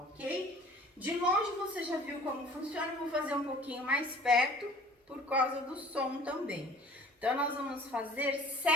De longe você já viu como funciona, eu vou fazer um pouquinho mais perto por causa do som também. Então, nós vamos fazer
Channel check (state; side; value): normal; both; correlation 0.49